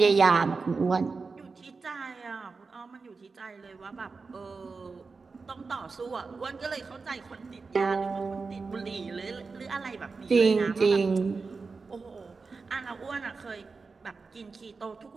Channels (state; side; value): quieter; left; 4.4 dB